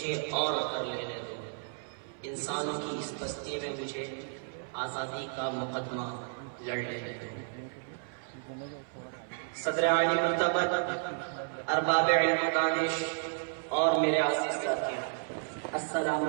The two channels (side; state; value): left; silent; 56 dB below the other